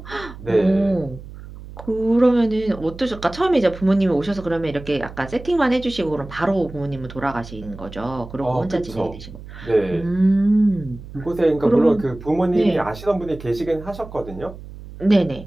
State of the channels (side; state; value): right; noise; hum, 15 dB below the sound